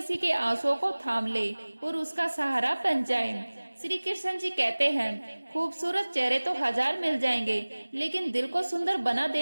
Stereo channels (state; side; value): inverted; both; correlation -1.00